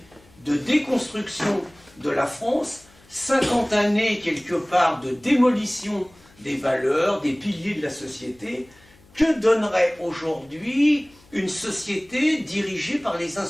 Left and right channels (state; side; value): noise; left; hum, 28 dB below the sound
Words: de déconstruction de la France, 50 années quelque part de démolition des valeurs, des piliers de la société. Que donnerait aujourd'hui une société dirigée par les